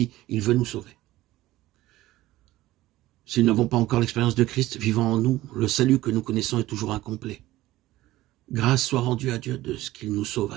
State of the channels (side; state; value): left; quieter; 16.6 dB